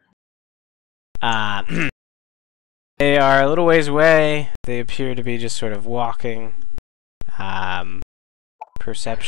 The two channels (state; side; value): quieter; right; 11.3 dB